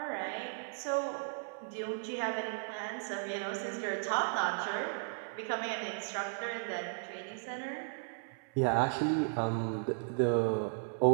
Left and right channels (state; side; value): silent; left; 54 dB below the other